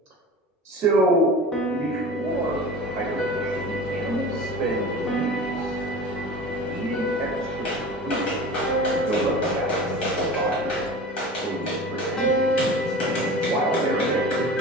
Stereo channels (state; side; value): normal; both; correlation 0.36